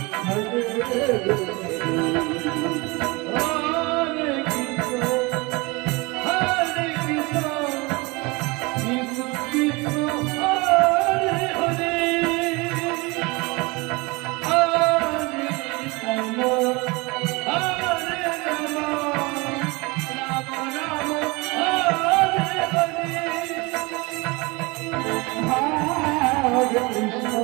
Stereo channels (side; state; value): left; quieter; 25.7 dB